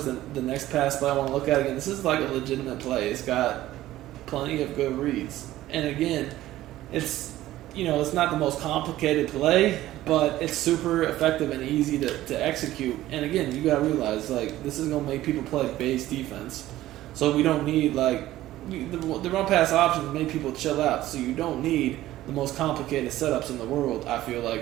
the next pass play I want to look at again. This is like a legitimate play. It's got plenty of good reads. And again, it's, you know, it's not the most complicated play, but it's super effective and easy to execute. And again, you got to realize, like, this is going to make people play base defense. So we don't need, like, the run pass options make people chill out. So you don't need the most complicated setups in the world, I feel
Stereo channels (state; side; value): quieter; left; 15.0 dB